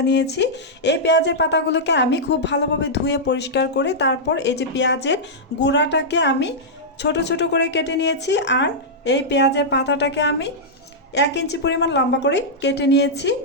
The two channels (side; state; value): both; normal; correlation -0.09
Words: নিয়েছি। এই পেঁয়াজের পাতাগুলোকে আমি খুব ভালোভাবে ধুয়ে পরিষ্কার করে তারপর এই যে পেঁয়াজের গুঁড়াটাকে আমি ছোট ছোট করে কেটে নিয়েছি। আর এই পেঁয়াজের পাতাটাকে আমি 1 ইঞ্চি পরিমাণ লম্বা করে কেটে নিয়েছি।